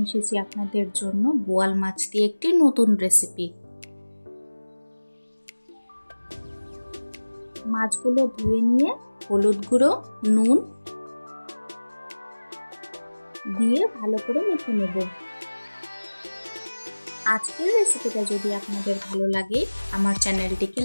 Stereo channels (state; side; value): inverted; both; correlation -1.00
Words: এসেছি আপনাদের জন্য বোয়াল মাছ দিয়ে একটি নতুন রেসিপি। মাছগুলো ধুয়ে নিয়ে হলুদ গুঁড়ো, নুন দিয়ে ভালো করে মেখে নেব। আজকের রেসিপিটা যদি আপনাদের ভালো লাগে আমার চ্যানেলটিকে